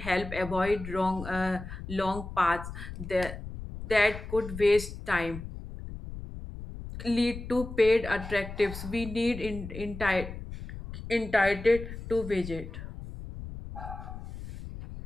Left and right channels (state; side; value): noise; left; rumble, 10 dB below the sound